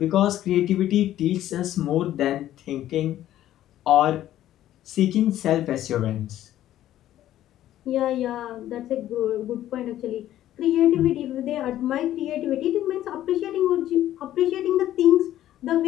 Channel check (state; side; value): quieter; right; 12.9 dB